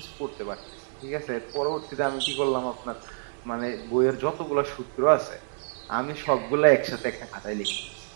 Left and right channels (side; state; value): left; silent; digital silence